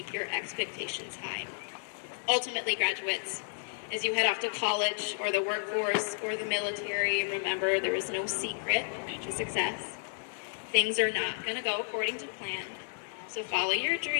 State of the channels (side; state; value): right; silent; digital silence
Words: your expectations high. Ultimately, graduates, as you head off to college or the workforce or the military, remember there is no secret to success. Things are not going to go according to plan, so follow your